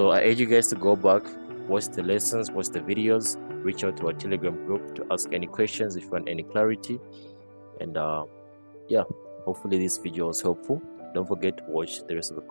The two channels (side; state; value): both; inverted; correlation -1.00